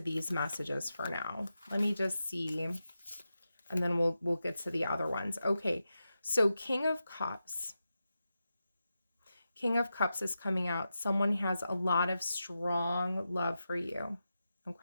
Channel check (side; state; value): both; inverted; correlation -0.90